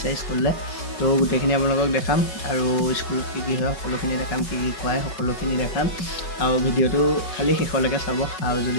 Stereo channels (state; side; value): late; right; 5.3 ms